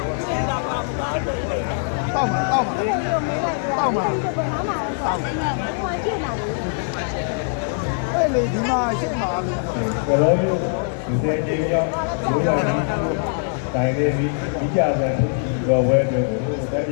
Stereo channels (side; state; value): right; silent; 56 dB below the other